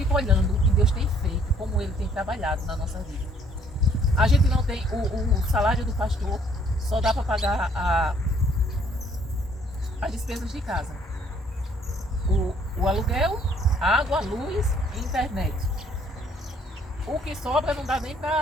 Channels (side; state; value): both; normal; correlation 0.62